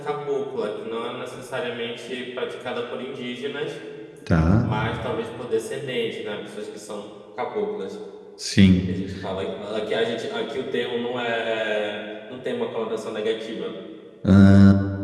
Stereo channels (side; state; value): both; identical; correlation 1.00